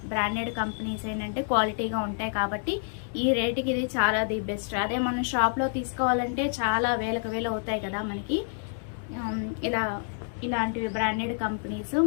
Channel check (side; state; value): right; silent; digital silence